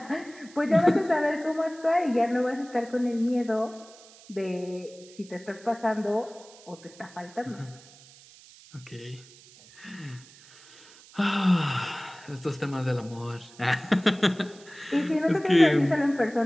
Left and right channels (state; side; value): noise; right; hiss, 23 dB below the sound